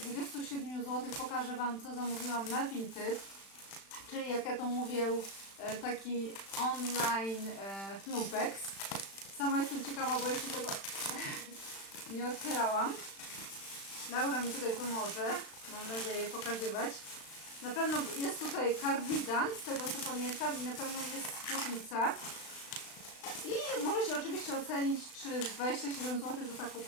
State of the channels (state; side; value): late; right; 36 ms